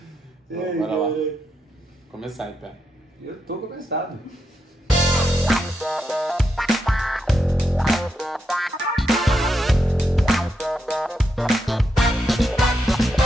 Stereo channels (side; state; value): both; normal; correlation 0.83